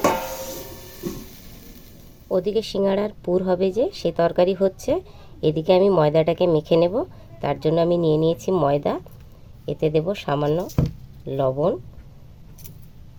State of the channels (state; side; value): identical; both; correlation 1.00